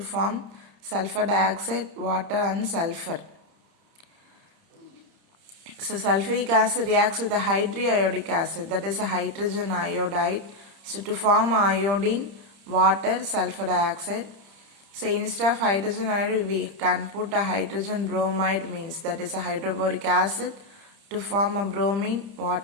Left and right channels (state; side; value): late; left; 30 ms